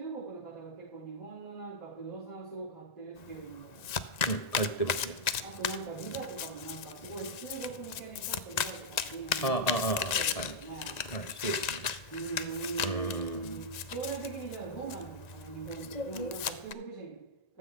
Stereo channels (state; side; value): late; right; 1.9 ms